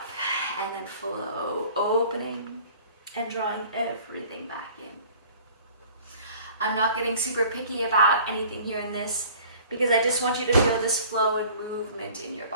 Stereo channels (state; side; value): inverted; both; correlation -0.49